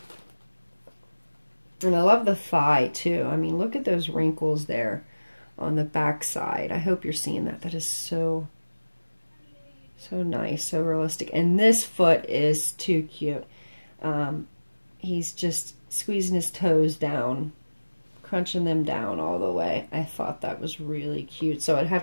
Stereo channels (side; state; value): both; inverted; correlation -1.00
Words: And I love the thigh too. I mean, look at those wrinkles there on the back side. I hope you're seeing that. That is so So nice, so realistic. And this foot is too cute. He's just squeezing his toes down, crunching them down all the way. I thought that was really cute. So I'd